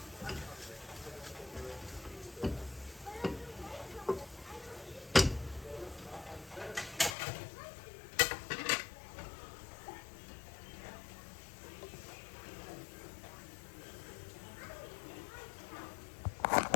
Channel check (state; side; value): drops out; right; at 7.2 s